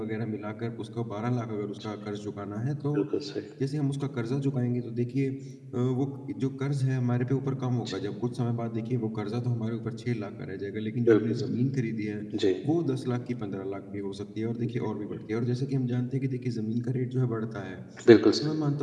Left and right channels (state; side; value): identical; both; correlation 1.00